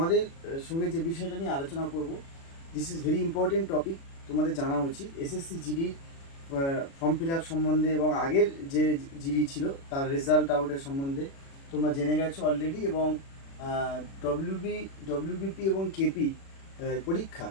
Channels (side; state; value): right; late; 36 ms